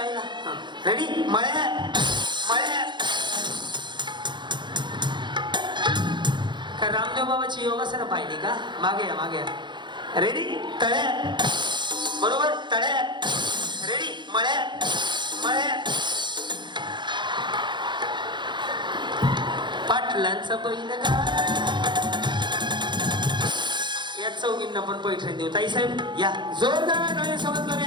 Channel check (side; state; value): left; late; 0.22 ms